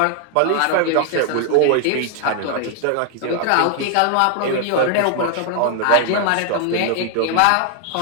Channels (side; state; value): both; different; correlation 0.00